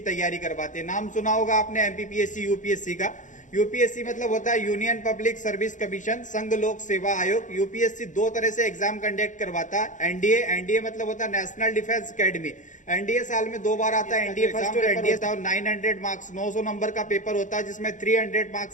तैयारी करवाते हैं। नाम सुना होगा आपने एमपीपीएससी यूपीएससी का। यूपीएससी मतलब होता है यूनियन पब्लिक सर्विस कमीशन, संघ लोक सेवा आयोग। यूपीएससी 2 तरह से एग्जाम कंडक्ट करवाता है। एनडीए मतलब होता है नेशनल डिफेंस अकेडमी। एनडीए साल में 2 बार आता है, एनडीए फर्स्ट और एनडीए 900 मार्क्स 900 नंबर का पेपर होता है, जिसमें 300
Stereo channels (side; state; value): right; late; 0.36 ms